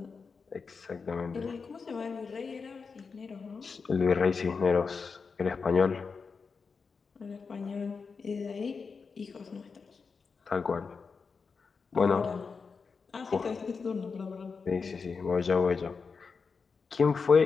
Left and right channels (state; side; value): quieter; right; 5.1 dB